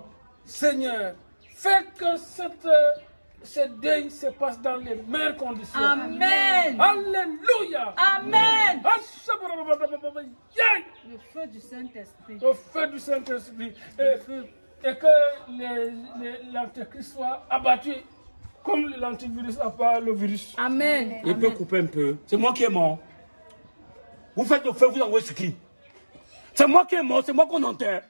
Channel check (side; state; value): both; inverted; correlation -1.00